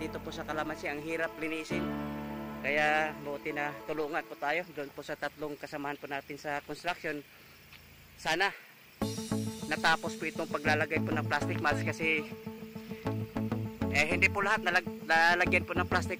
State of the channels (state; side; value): identical; both; correlation 1.00